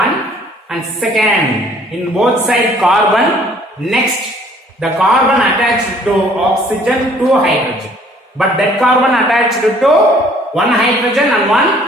and second, in both sides carbon, next the carbon attached to oxygen, 2 hydrogen. But that carbon attached to 1 hydrogen and 1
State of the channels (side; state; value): both; normal; correlation 0.58